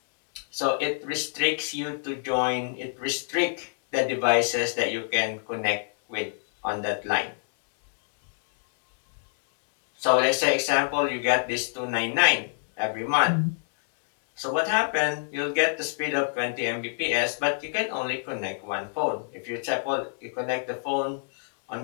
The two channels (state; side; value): silent; right; 61 dB below the other